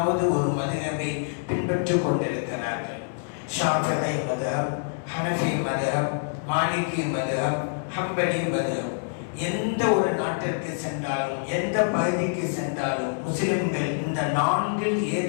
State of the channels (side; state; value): right; silent; digital silence